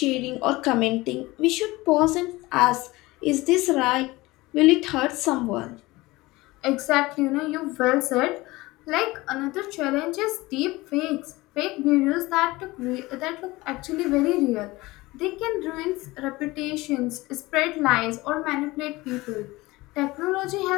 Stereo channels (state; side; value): quieter; right; 20.5 dB